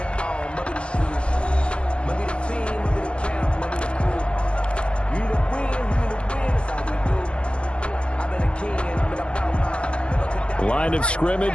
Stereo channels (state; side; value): late; right; 0.058 ms